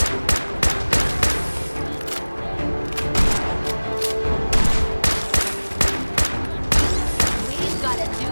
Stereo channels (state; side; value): inverted; both; correlation -1.00